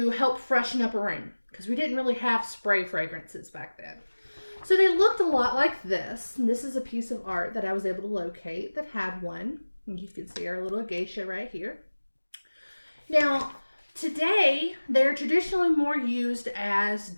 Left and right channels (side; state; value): both; inverted; correlation -1.00